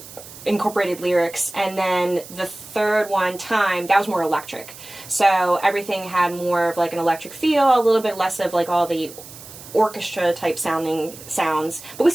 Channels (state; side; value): noise; right; hiss, 17 dB below the sound